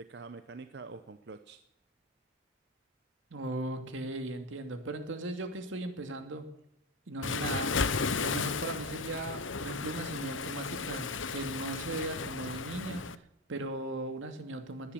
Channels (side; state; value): both; normal; correlation 0.19